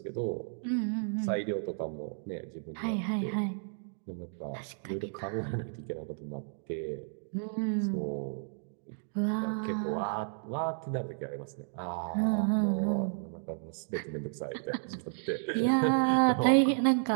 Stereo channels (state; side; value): silent; left; digital silence